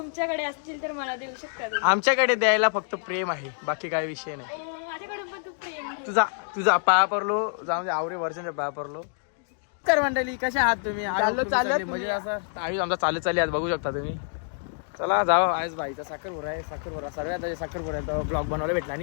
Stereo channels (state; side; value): silent; right; digital silence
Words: असतील तर मला देऊ शकता तुम्ही. आमच्याकडे द्यायला फक्त प्रेम आहे, बाकी काय विषय नाही. माझ्याकडून पण तू प्रेम. तुझा पाया पडलो, जाऊन आवरे वर्षांच्या पाया पडलो. कर मंडळी, कशा आहात तुम्ही? चालत म्हणजे असं आयुष आमचा चालत आज बघू शकता तुम्ही. चला जाऊ. आज बाईचा साखरपुडा आहे, साखरपुडा सगळ्यात साखरपुडा ब्लॉग बनवायला भेटला